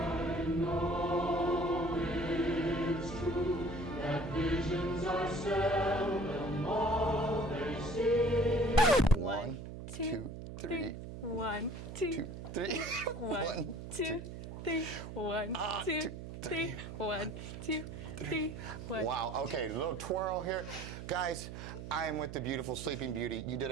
Visions are seldom all they see. 1, 2, 3. 1, 2, 2, 3. 1, 2, 3, 1, Ah, 2, three. 1, 2, 3. 1. Wow, okay, a little twirl here. Guys, I am with the beautiful Sleeping Beauty. You did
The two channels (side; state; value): right; noise; hum, 9 dB below the sound